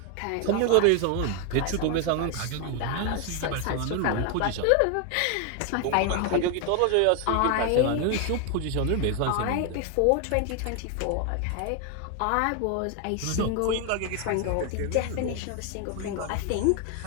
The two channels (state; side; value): different; both; correlation 0.01